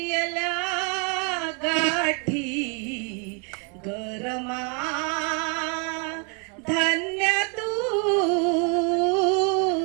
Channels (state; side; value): quieter; left; 37.3 dB